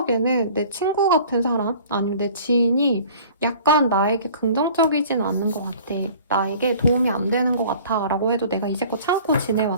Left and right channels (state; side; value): inverted; both; correlation -0.47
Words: 내 친구 같은 사람 아니면 내 지인이 약간 나에게 긍정적이진 않는 것 같아. 나에게 도움이 안 되는 것 같아 라고 해도 내가 이제껏 참고